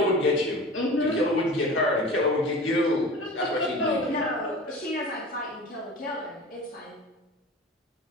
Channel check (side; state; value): both; normal; correlation 0.36